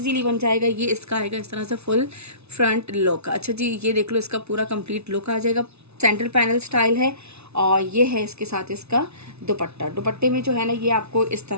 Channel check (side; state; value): left; late; 0.80 ms